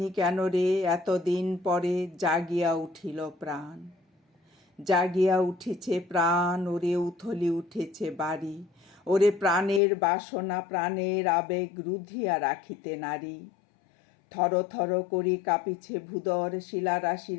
কেন রে এতদিন পরে জাগিয়া উঠিল প্রাণ। জাগিয়া উঠেছে প্রাণ, ওরে উথলি উঠেছে বাড়ি, ওরে প্রাণের বাসনা প্রাণের আবেগ রুধিয়া রাখিতে নারী। থর থর করি কাঁপিছে ভূদর, শিলা রাশি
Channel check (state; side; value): drops out; right; at 9.8 s